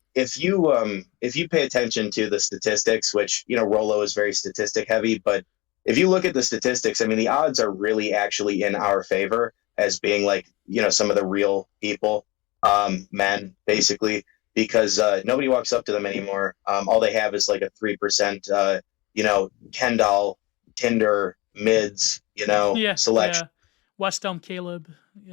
if you pay attention to the statistics, which Rolo is very statistic heavy, but if you look at the statistics, I mean the odds are really actually in our favor as being like some of the real people, men basically, because nobody walks up to them anymore. All they have is like a 3% Ken doll Tinder mids, Yeah, selection. yeah. West Elm Caleb.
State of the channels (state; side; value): quieter; right; 23.0 dB